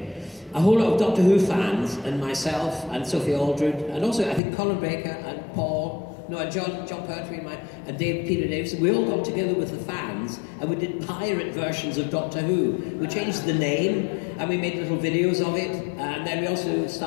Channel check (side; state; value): right; drops out; at 4.4 s